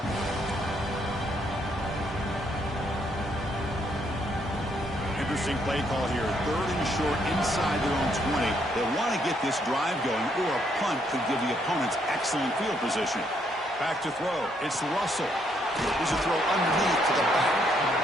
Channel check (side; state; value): both; normal; correlation 0.72